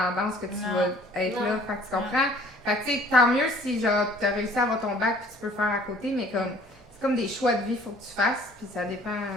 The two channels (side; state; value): both; normal; correlation 0.55